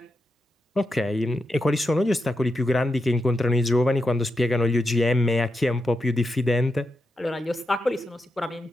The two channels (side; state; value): both; normal; correlation 0.87